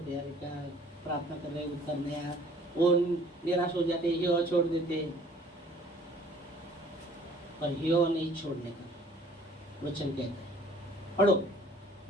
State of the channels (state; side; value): normal; both; correlation 0.54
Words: हैं, क्या प्रार्थना कर रहे उत्तर नहीं आया, वो निराश हो जाते, हियो छोड़ देते। पर हियो नहीं छोड़ने का वचन कहता है। पढ़ो